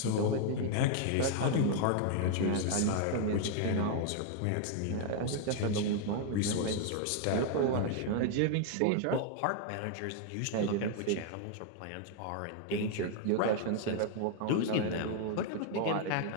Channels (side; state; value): both; different; correlation 0.00